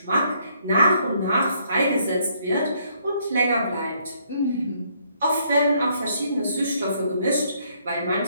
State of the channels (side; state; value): both; inverted; correlation -0.68